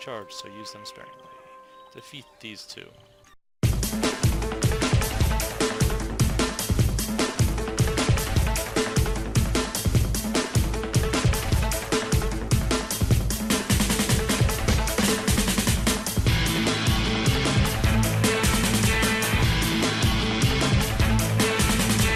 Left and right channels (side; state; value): both; identical; correlation 1.00